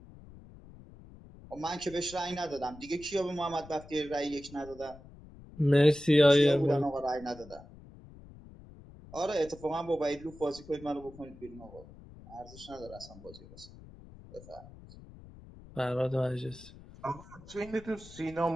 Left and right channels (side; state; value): left; noise; rumble, 19 dB below the sound